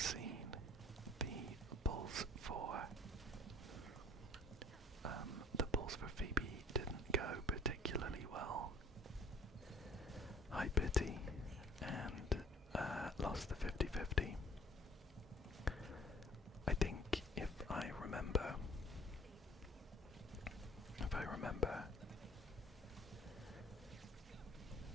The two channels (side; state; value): both; normal; correlation 0.52